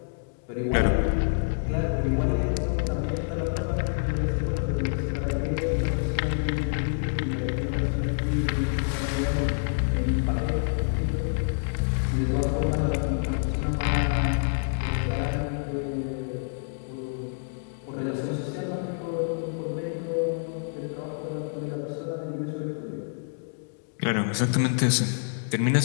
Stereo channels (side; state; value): right; silent; digital silence